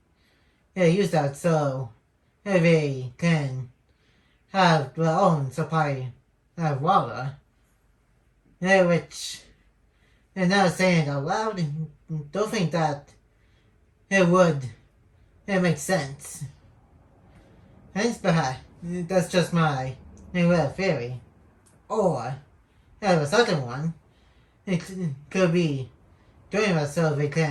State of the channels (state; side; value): identical; both; correlation 1.00